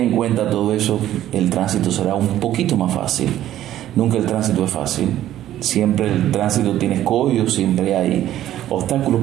en cuenta todo eso, el tránsito será un poquito más fácil. Nunca el tránsito es fácil. Siempre el tránsito tiene escollos, siempre hay obstáculos,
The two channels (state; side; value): quieter; left; 12.7 dB